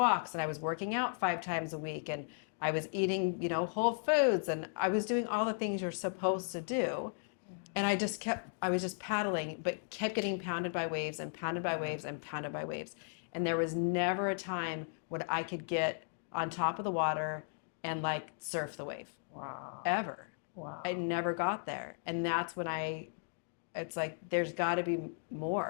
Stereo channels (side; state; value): right; silent; digital silence